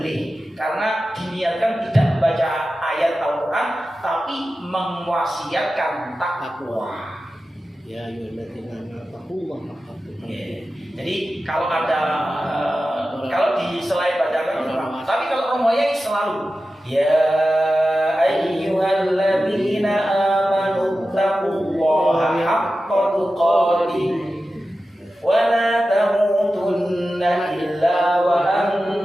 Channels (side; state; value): both; normal; correlation 0.93